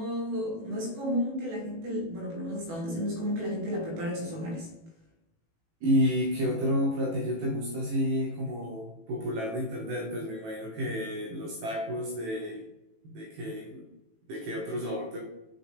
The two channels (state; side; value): late; left; 18 ms